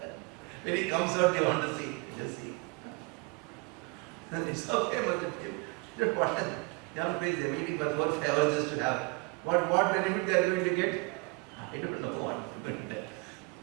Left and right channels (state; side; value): quieter; left; 30.5 dB